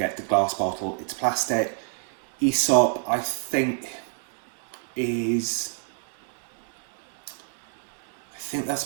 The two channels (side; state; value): left; silent; digital silence